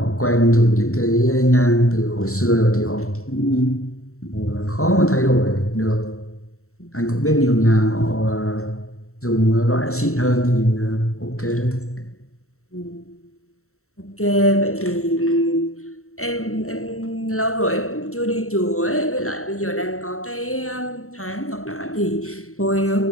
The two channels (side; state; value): right; late; 0.63 ms